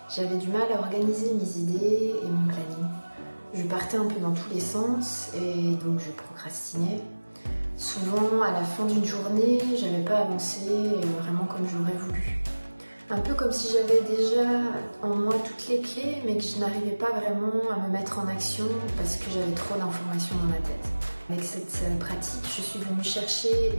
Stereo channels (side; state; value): both; inverted; correlation -1.00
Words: j'avais du mal à organiser mes idées et mon planning. Je partais un peu dans tous les sens et donc je procrastinais. Souvent, à la fin d'une journée, j'avais pas avancé vraiment comme j'aurais voulu. Un peu comme si j'avais déjà en moi toutes les clés, mais que je n'arrivais pas vraiment à me mettre en action parce que j'avais trop d'informations dans ma tête. Avec cette pratique, je suis venue chercher